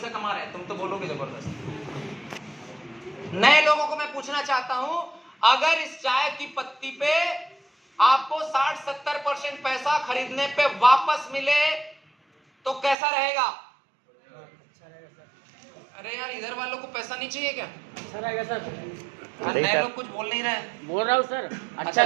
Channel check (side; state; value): left; drops out; at 13.0 s